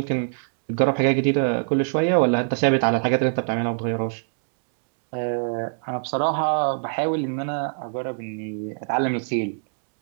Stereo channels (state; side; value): silent; left; digital silence